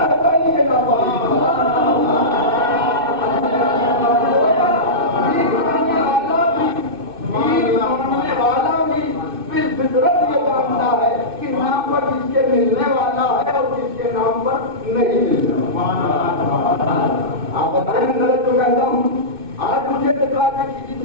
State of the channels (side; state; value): left; late; 2.6 ms